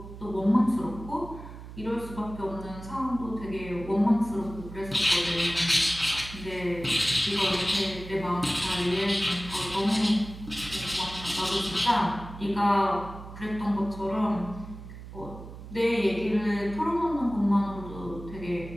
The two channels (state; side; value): noise; right; hum, 13 dB below the sound